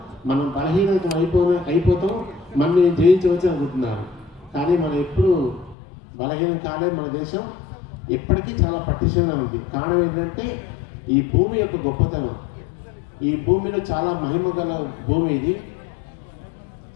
మనం బలహీనత అయిపోతాం, మనని జయించవచ్చు అనుకుంటున్నారు. కానీ మనం ఎప్పుడు బలహీనం కాలే. మన దేశం ఎప్పటికీ చాలా పటిష్టంగా ఉంది. కారణం ఏంటంటే ఈ భూమి యొక్క గొప్పతనం. ఈ భూమిలో చాలా మహిమ గల భూమి ఇది.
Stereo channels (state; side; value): drops out; right; at 5.8 s